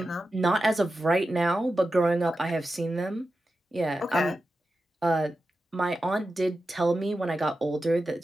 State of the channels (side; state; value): both; normal; correlation 0.91